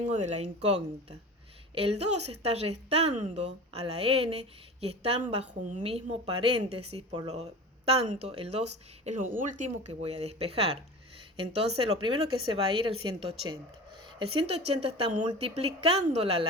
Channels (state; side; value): normal; both; correlation 0.34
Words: de la incógnita. El 2 está restando a la n y están bajo un mismo paréntesis, por lo tanto el 2 es lo último que voy a despejar. Entonces lo primero que se va a ir es el 180. El 180 está multiplicándola